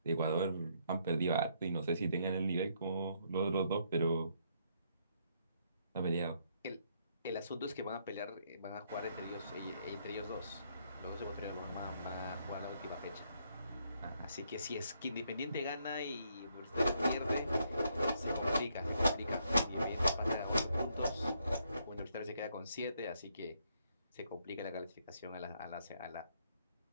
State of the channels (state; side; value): inverted; both; correlation -0.73